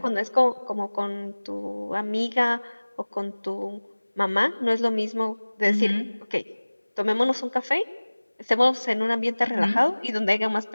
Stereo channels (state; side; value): inverted; both; correlation -1.00